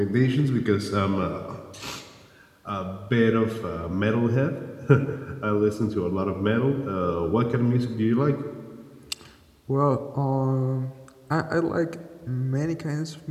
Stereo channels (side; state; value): both; identical; correlation 1.00